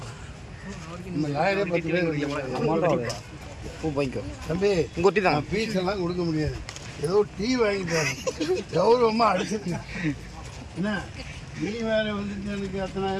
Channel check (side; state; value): both; identical; correlation 1.00